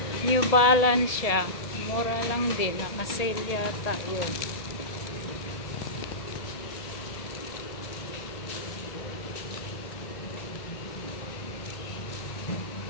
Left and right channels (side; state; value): right; late; 1.8 ms